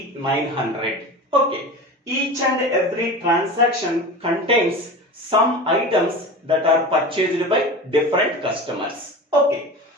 Okay, each and every transaction contains some items that are purchased by different customers. Okay,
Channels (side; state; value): both; normal; correlation 0.31